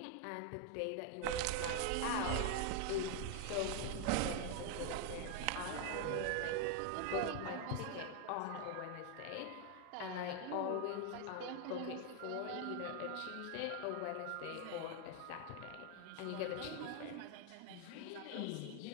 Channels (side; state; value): both; different; correlation 0.01